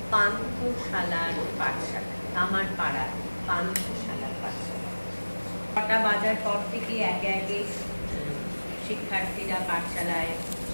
পান্থশালার পাঠশালা কামারপাড়ার পান্থশালার পাঠশালা 6টা বাজার পর থেকে একে একে শিক্ষার্থীরা পাঠশালায়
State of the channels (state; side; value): inverted; both; correlation -1.00